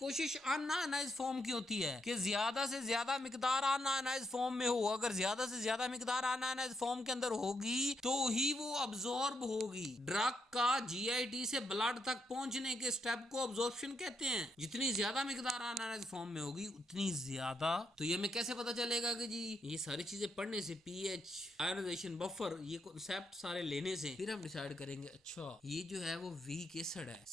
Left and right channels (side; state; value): both; normal; correlation 0.80